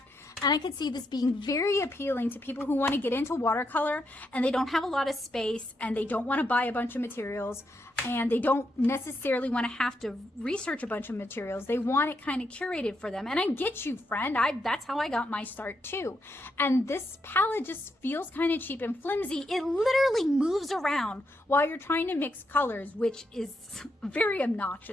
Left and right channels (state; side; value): normal; both; correlation 0.81